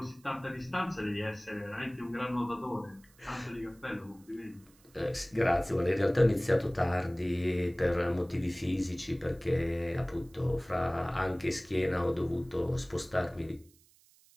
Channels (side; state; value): right; noise; hiss, 29 dB below the sound